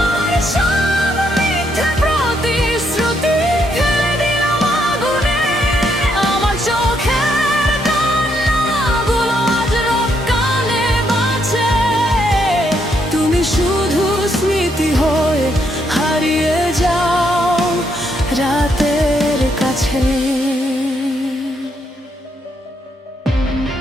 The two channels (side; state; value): both; normal; correlation 0.75